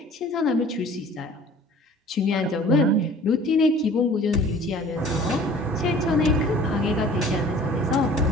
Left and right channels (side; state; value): both; normal; correlation 0.48